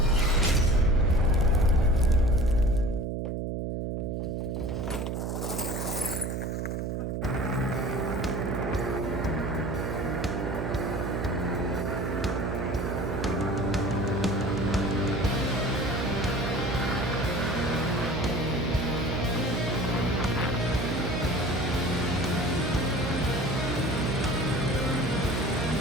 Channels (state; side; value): noise; right; hum, 2 dB below the sound